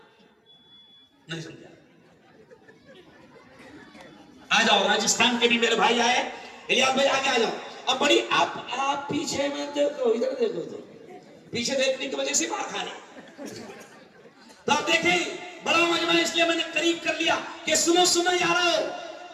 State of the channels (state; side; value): identical; both; correlation 1.00